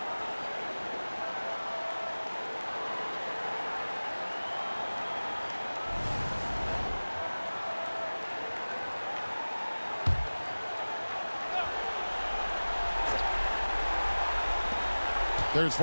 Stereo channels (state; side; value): inverted; both; correlation -1.00